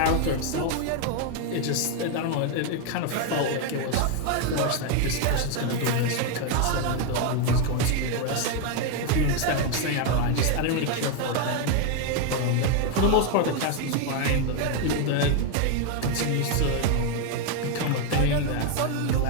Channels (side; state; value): both; different; correlation 0.01